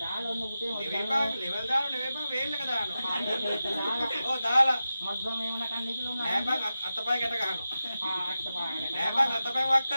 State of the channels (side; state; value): both; inverted; correlation -0.92